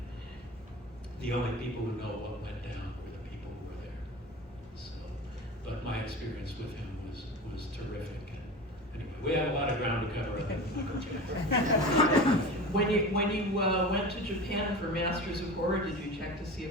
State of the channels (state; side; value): normal; both; correlation 0.32